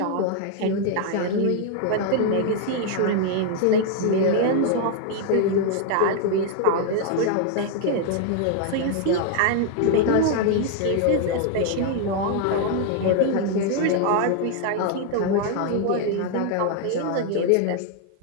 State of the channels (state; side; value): different; both; correlation 0.00